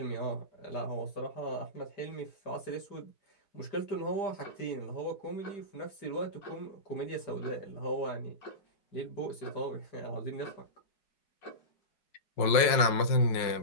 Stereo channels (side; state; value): right; late; 4.7 ms